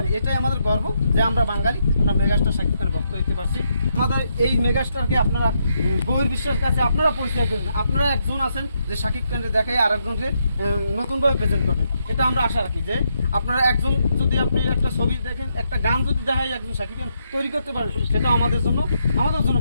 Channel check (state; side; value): inverted; both; correlation -0.79